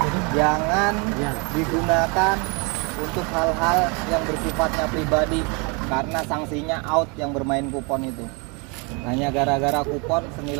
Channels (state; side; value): quieter; left; 31.5 dB